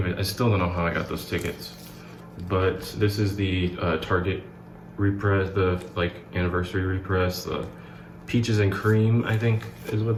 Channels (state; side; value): identical; both; correlation 1.00